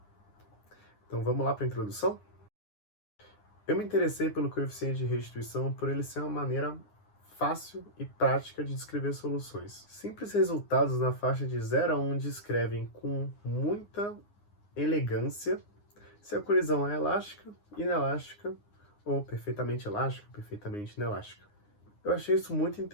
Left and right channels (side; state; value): right; late; 9.7 ms